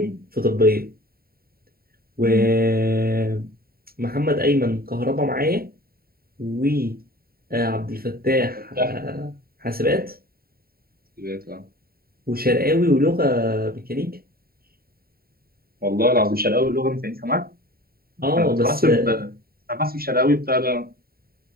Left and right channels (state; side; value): late; left; 0.44 ms